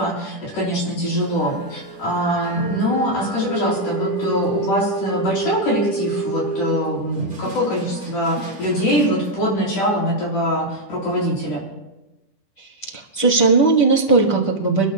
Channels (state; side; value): late; right; 10 ms